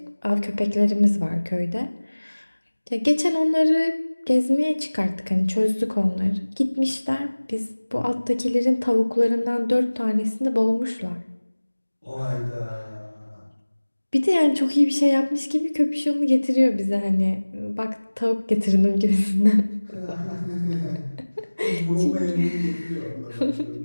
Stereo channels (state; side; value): inverted; both; correlation -1.00